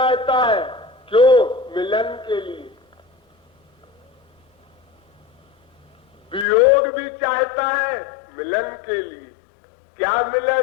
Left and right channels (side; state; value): right; drops out; at 6.5 s